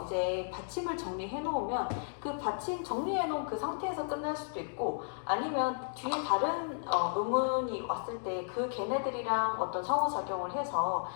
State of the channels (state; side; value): silent; right; digital silence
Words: 이제 받침을 정리해 놓으면 그 받침 정리해 놓은 그 상태에서 끝날 수도 있고 아니면 뒤에 다른 음운이 왔을 때 그 걔네들이랑 어떤 상호작용을 해서